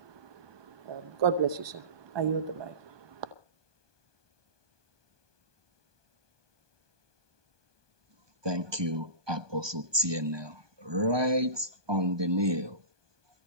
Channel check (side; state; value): left; late; 1.2 ms